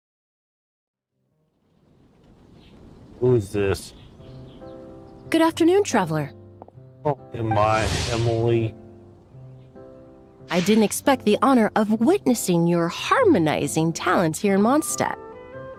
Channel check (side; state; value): both; identical; correlation 1.00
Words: Who's this? Good afternoon, traveler. Oh, am I Emily? I didn't expect the honor of witnessing your harmonizing talents here in Mondstat.